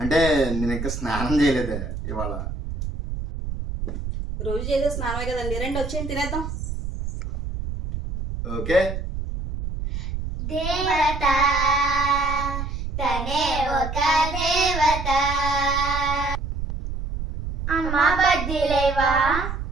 అంటే నేను ఇంకా స్నానం చేయలేదే ఇవాళ. రోజు చేసే స్నానమే కదండి, రండి వచ్చేయండి తినేద్దాం. ఓకే. దేవత తనే ఒక దేవత. అమ్మ బజ్జీలేవా?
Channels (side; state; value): right; noise; rumble, 5 dB below the sound